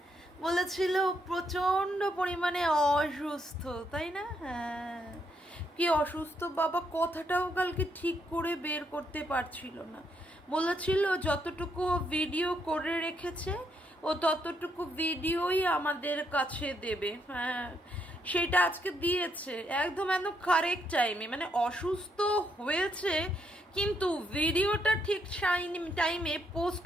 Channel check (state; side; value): normal; both; correlation 0.76